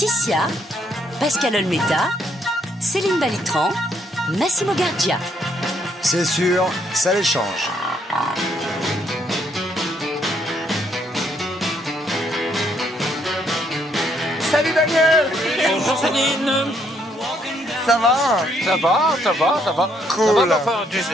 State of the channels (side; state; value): both; normal; correlation 0.71